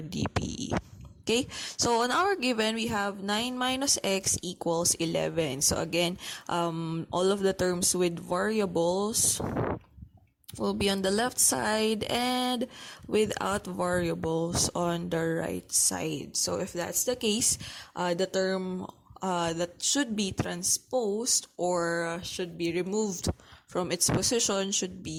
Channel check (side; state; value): both; identical; correlation 1.00